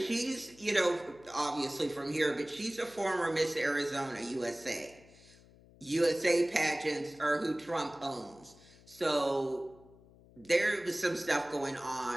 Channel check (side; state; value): left; noise; hum, 25 dB below the sound